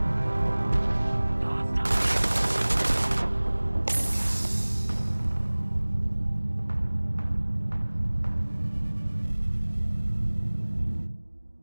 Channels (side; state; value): both; inverted; correlation -1.00